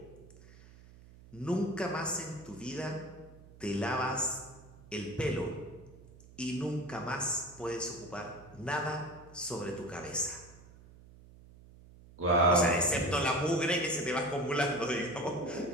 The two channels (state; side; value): noise; right; hum, 21 dB below the sound